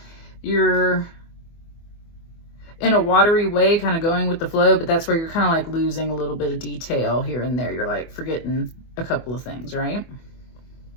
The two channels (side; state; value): right; late; 24 ms